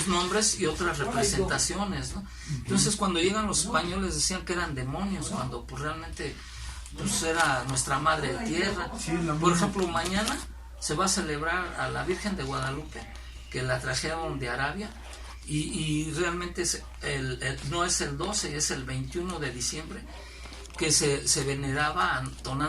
nombres y otras representaciones, ¿no? Entonces, cuando llegan los españoles decían que eran demonios, cuando pues realmente pues era nuestra madre tierra. Sí, por ejemplo, mañana se va a celebrar a la Virgen de Guadalupe, que la trajeron de Arabia, y realmente no es el 12, es el 21 de diciembre, que se veneraba a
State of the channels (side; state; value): both; identical; correlation 1.00